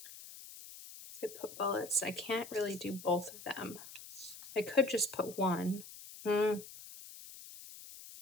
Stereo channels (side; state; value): left; noise; hiss, 15 dB below the sound